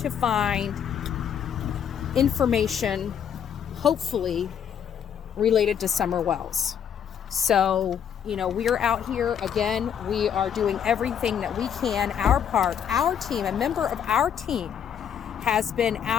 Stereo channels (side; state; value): right; quieter; 8.5 dB